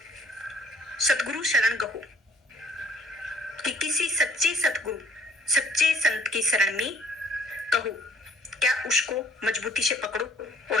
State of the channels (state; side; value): normal; both; correlation 0.58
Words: सतगुरु शरण गहो, कि किसी सच्चे सतगुरु सच्चे संत की शरण में कहो, क्या उसको मजबूती से पकड़ो